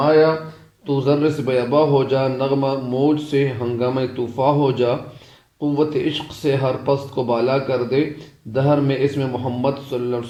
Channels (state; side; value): identical; both; correlation 1.00